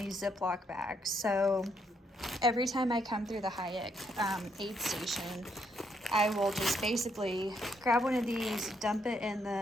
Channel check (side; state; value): both; normal; correlation 0.74